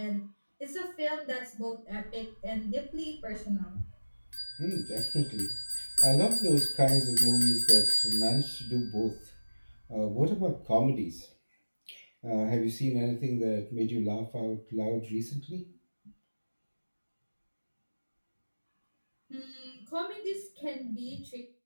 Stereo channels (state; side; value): inverted; both; correlation -1.00